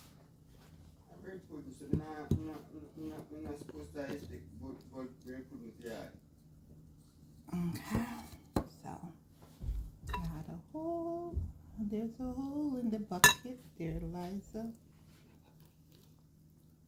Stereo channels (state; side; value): identical; both; correlation 1.00